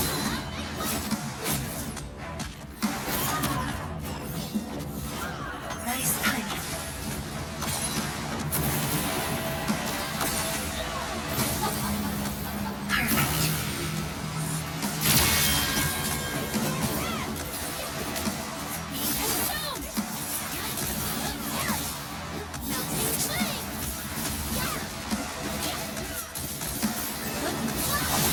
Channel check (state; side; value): identical; both; correlation 1.00